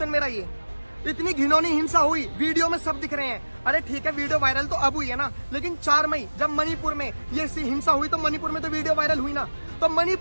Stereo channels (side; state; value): both; inverted; correlation -1.00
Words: मेरा ये। इतनी घिनौनी हिंसा हुई, वीडियो में सब दिख रहे हैं। अरे ठीक है, वीडियो वायरल तो अब हुई है ना, लेकिन 4 मई जब मणिपुर में ये हिंसा हुई तो मणिपुर में तो वीडियो वायरल हुई ना। तो